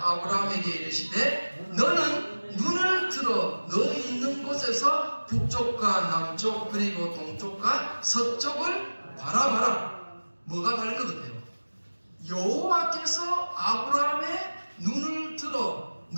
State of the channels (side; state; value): both; inverted; correlation -1.00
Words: 이르시되 너는 눈을 들어 너 있는 곳에서 북쪽과 남쪽 그리고 동쪽과 서쪽을 바라봐라. 뭐가 다른 것 같아요? 여호와께서 아브라함의 눈을 들어